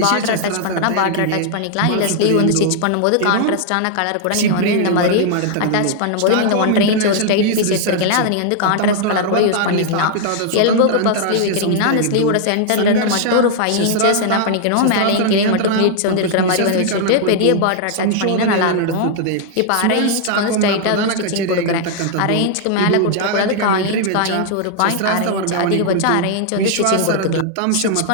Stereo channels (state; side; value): different; both; correlation 0.00